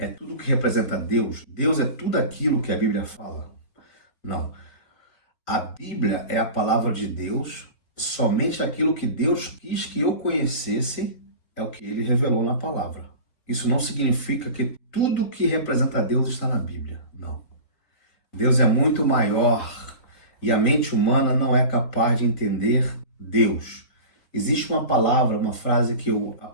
tudo que representa Deus. Deus é tudo aquilo que a Bíblia fala? Não. A Bíblia é a palavra de Deus, somente aquilo que Deus quis que eu conhecesse é o que ele revelou na palavra. Isso não significa que tudo que representa Deus está na Bíblia. Não. Deus é muito maior e a mente humana não é capaz de entender Deus. Existe uma palavra, uma frase que eu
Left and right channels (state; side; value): late; right; 3.9 ms